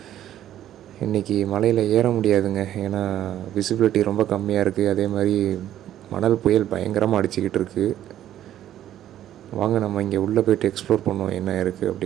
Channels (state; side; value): quieter; left; 11.9 dB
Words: இன்றைக்கி மலையில் ஏற முடியாதுங்க, ஏன்னா விசிபிலிட்டி ரொம்ப கம்மியாக இருக்குது. அதே மாதிரி மணல் புயல் பயங்கரமாக அடிச்சுக்கிட்டு இருக்குது. வாங்க நம்ம இங்கே உள்ளே போய்ட்டு எக்ஸ்ப்ளோர் பண்ணுவோம் என்ன இருக்குது